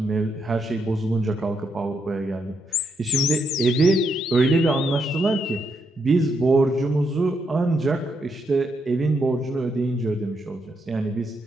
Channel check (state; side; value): normal; both; correlation 0.78